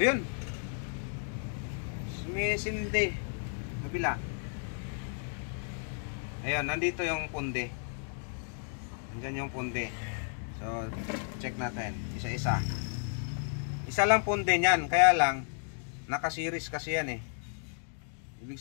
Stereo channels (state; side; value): silent; right; 56 dB below the other